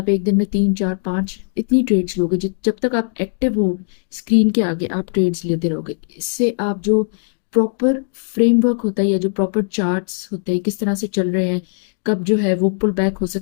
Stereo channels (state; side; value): silent; right; digital silence